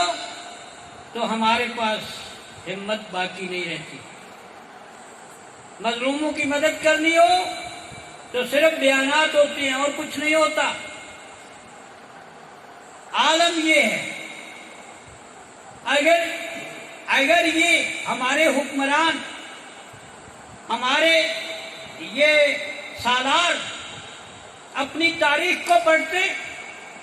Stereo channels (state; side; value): identical; both; correlation 1.00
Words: تو ہمارے پاس ہمت باقی نہیں رہتی، مظلوموں کی مدد کرنی ہو تو صرف بیانات ہوتے ہیں اور کچھ نہیں ہوتا۔ عالم یہ ہے، اگر اگر یہ ہمارے حکمران، ہمارے یہ سالار اپنی تاریخ کو پڑھتے